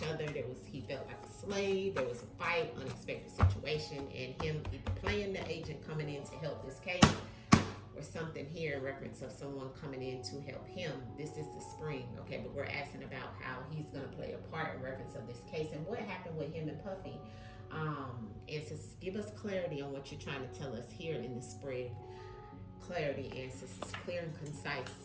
other. He felt like a slave. There was a fight, unexpected situation, and him either playing the agent coming in to help this case, or something here in reference of someone coming in to help him. This is the spring, okay? But we're asking about how he's gonna play a part in reference of this case and what happened with him and Puffy. Ancestors, give us clarity on what you're trying to tell us here in the spread. Clarity, ancestors, clear and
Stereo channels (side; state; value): both; identical; correlation 1.00